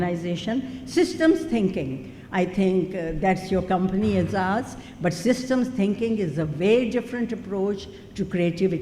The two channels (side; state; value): both; identical; correlation 1.00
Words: Systems thinking, I think that's your company, Aezaz, but systems thinking is a very different approach to